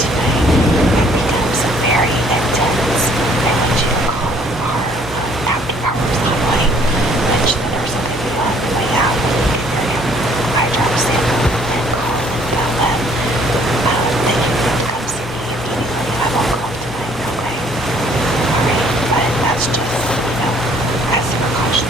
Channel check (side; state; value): both; normal; correlation 0.61